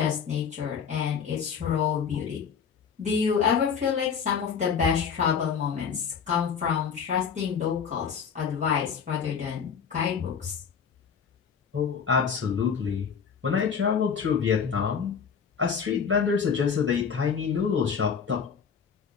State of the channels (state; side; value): quieter; right; 6.7 dB